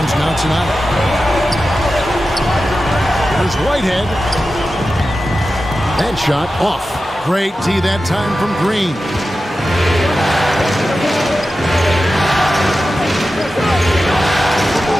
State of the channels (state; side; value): normal; both; correlation 0.93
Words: now tonight. Here's Whitehead. That shot off. Great D that time from Green.